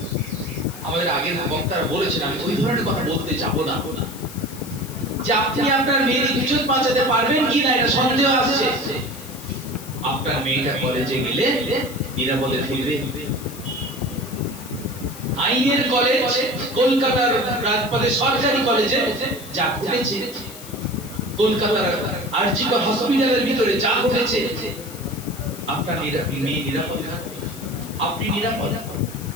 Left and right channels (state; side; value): noise; left; hiss, 15 dB below the sound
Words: আমাদের আগের বক্তারা বলেছেন, আমি ওই ধরনের কথা বলতে যাব না, যে আপনি আপনার মেয়ের ইজ্জত বাঁচাতে পারবেন কিনা এটা সন্দেহ আসছে। আপনার মেয়েটা কলেজে গেলে নিরাপদে ফিরবে। আইনের কলেজ, কলকাতার রাজপথে সরকারি কলেজে যা ঘটেছে, কলকাতার আরজিকর হসপিটালের ভিতরে যা ঘটেছে, আপনার মেয়ে নিরাপদ থাকবে, আপনি নিরাপদ।